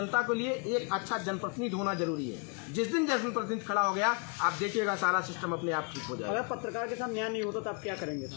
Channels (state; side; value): quieter; right; 36.4 dB